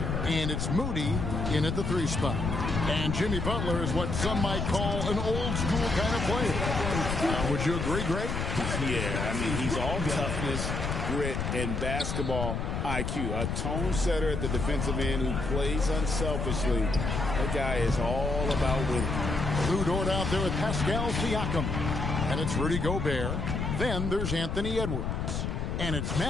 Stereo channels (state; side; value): noise; left; rumble, 2 dB below the sound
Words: And it's Moody in at the 3 spot. And Jimmy Butler is what some might call an old school kind of player. Would you agree, Greg? Yeah, I mean, he's all toughness, grit, and basketball IQ. A tone setter at the defensive end who plays unselfishly. That guy is all about winning. Lou Dort out there with Pascal Siakam. And it's Rudy Gobert. Then there's Anthony Edwards. And it's